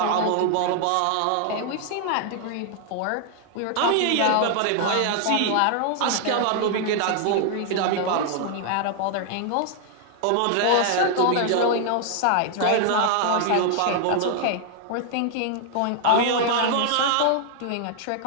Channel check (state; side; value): different; both; correlation 0.00